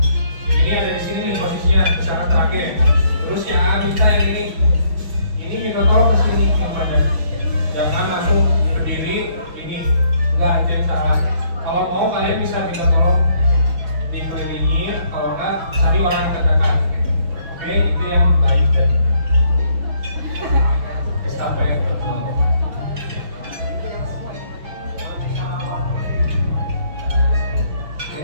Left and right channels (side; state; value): left; late; 5.8 ms